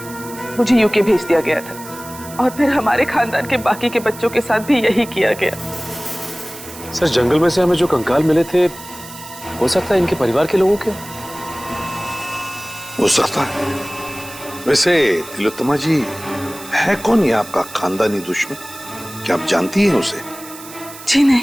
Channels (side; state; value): right; noise; hiss, 16 dB below the sound